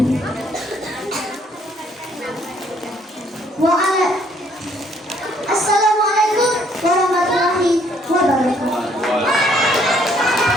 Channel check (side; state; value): both; normal; correlation 0.65